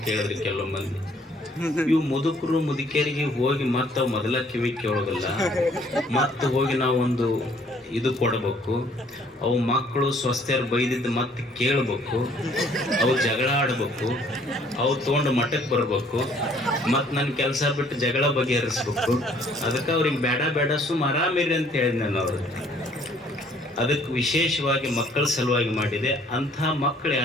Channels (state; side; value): normal; both; correlation 0.60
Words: ಕೇಳಿದ್ರಿ ಕೆಲವು ಮಂದಿ. ಇವು ಮುದುಕರು ಮುದುಕಿಯರಿಗೆ ಹೋಗಿ ಮತ್ತೆ ಅವು ಮೊದಲ ಕಿವಿ ಕೇಳೋದಿಲ್ಲ, ಮತ್ತೆ ಹೋಗಿ ನಾವೊಂದು ಇದು ಕೊಡಬೇಕು. ಅವು ಮಕ್ಕಳು ಸ್ವಸ್ಥರು ಬೈದಿದ್ದು ಮತ್ತೆ ಕೇಳಬೇಕು, ಅವು ಜಗಳ ಆಡ್ಬೇಕು, ಅವು ತೊಗೊಂಡು ಮಠಕ್ಕೆ ಬರ್ಬೇಕು, ಮತ್ತು ನನ್ನ ಕೆಲಸ ಬಿಟ್ಟು ಜಗಳ ಬಗೆಹರಿಸ್ಬೇಕು. ಅದಕ್ಕೆ ಅವ್ರಿಗೆ ಬೇಡ ಸುಮ್ಮ ಆರಾಮಿರಿ ಅಂತ ಹೇಳಿದ್ ನಾನು ಅವ್ರಿಗೆ. ಅದಕ್ಕೆ ವಿಶೇಷವಾಗಿ ಮಕ್ಕಳ ಸಲುವಾಗಿ ಮಾಡಿದೆ. ಅಂಥ ಮಕ್ಕಳು